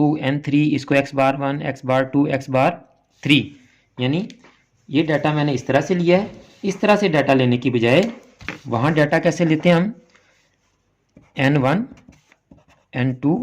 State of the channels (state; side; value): identical; both; correlation 1.00